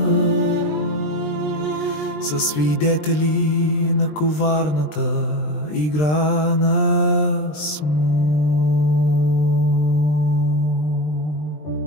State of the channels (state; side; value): late; right; 20 ms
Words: са свидетели на коварната игра на смут.